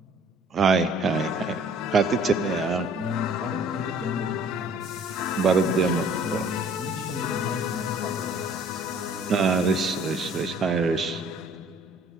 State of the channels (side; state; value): both; normal; correlation 0.54